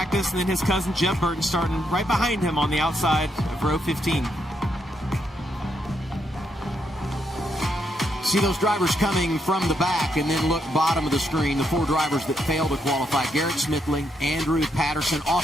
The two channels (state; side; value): normal; both; correlation 0.78